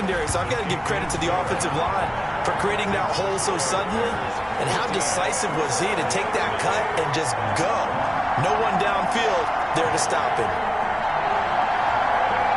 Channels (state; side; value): identical; both; correlation 1.00